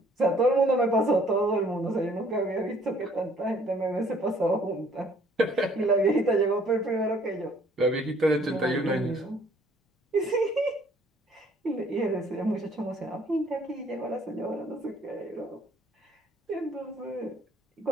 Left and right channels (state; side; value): normal; both; correlation 0.60